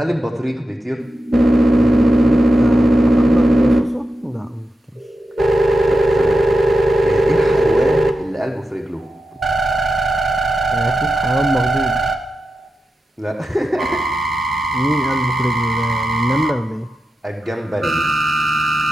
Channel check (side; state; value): both; normal; correlation 0.91